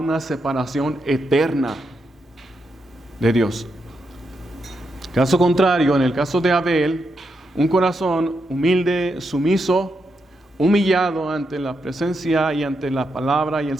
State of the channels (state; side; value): normal; both; correlation 0.83